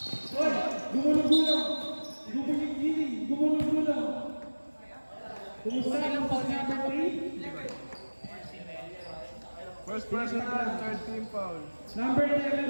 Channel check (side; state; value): both; inverted; correlation -1.00